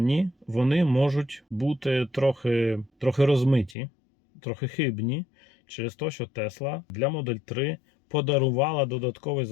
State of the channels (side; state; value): right; drops out; at 3.8 s